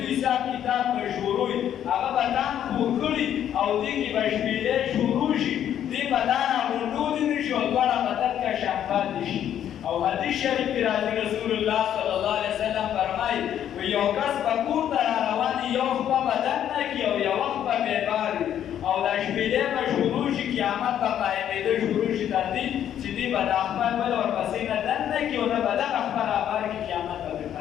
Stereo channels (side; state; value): right; quieter; 10.2 dB